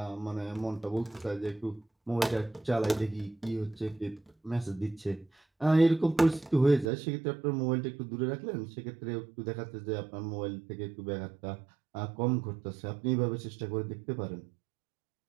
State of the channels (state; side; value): drops out; left; at 6.9 s